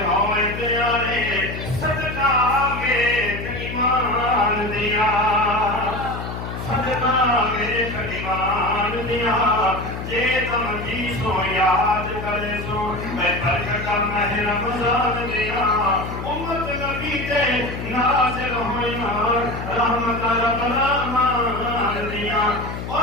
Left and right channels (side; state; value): left; noise; hum, 7 dB below the sound